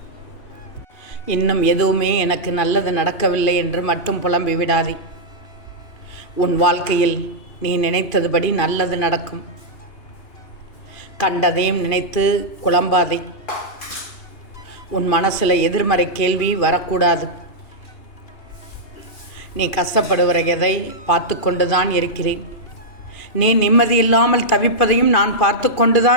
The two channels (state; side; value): late; right; 2.5 ms